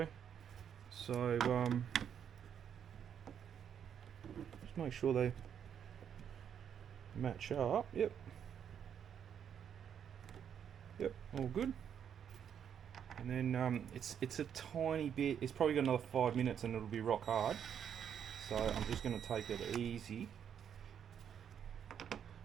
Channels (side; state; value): left; quieter; 8.4 dB